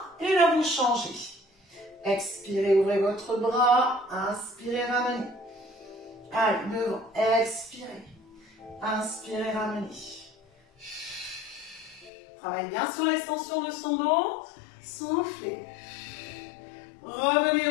Et là, vous changez. Expirez, ouvrez votre bras. Inspirez, ramenez. Allez, devant. Expirez. Inspirez, ramenez. Travaillez bien sur l'extension de son dos. Soufflez. Revenez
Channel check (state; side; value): drops out; right; at 12.1 s